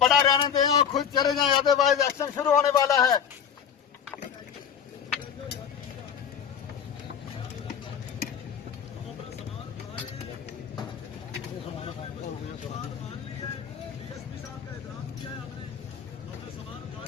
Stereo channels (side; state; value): right; quieter; 8.0 dB